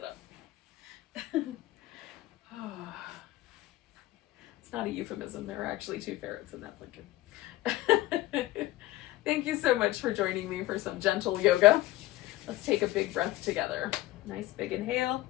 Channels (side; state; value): right; quieter; 16.9 dB